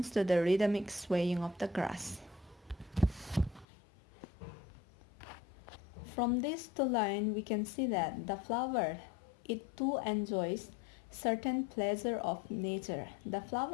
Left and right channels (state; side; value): drops out; right; at 3.7 s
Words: to the rhythmic swaying of the grass. From this two line we can see that the flower it too enjoys certain pleasure of nature. The